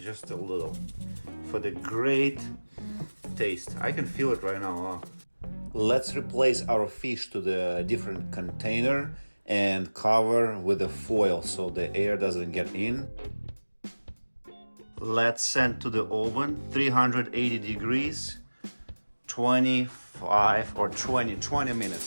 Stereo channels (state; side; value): inverted; both; correlation -1.00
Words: a little for the great taste. I can feel it right now. Let's replace our fish to the different container and cover with a foil so the air doesn't get in. Let's send to the oven 380 degrees, 25 or 20